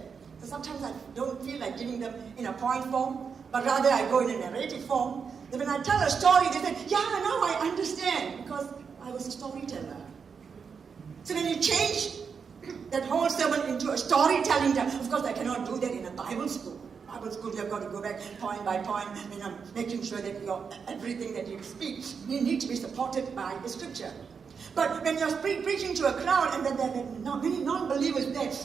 So sometimes I don't feel like giving them in a point form, but rather I go in a narrative form. Then when I tell a story, they say, yeah, now I understand, because I was a storyteller. So when you change that whole sermon into a storytelling, of course I cannot do that in a Bible school. Bible school, you have got to go back point by point, making sure that everything that you speak, you need to be supported by the scripture. But when you're preaching to a crowd and then there are many non-believers there,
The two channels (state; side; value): quieter; left; 6.0 dB